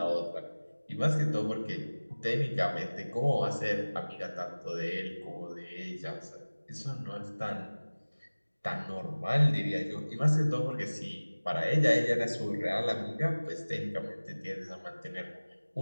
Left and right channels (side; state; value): both; inverted; correlation -1.00